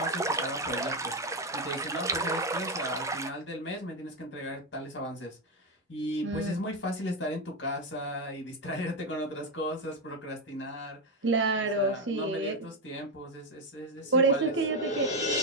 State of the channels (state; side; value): normal; both; correlation 0.08